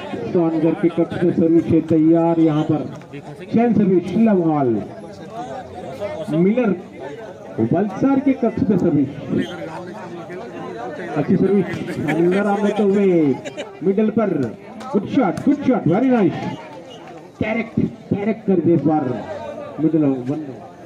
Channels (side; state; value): both; identical; correlation 1.00